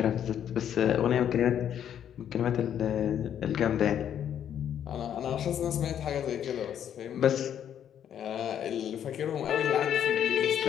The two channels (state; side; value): quieter; right; 9.6 dB